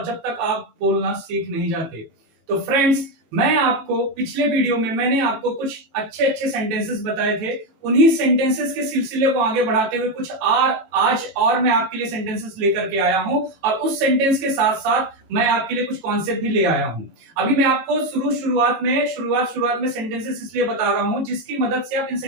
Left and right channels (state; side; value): late; left; 18 ms